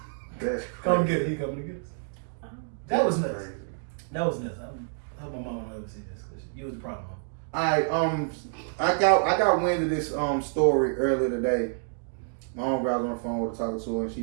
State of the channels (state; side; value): silent; left; digital silence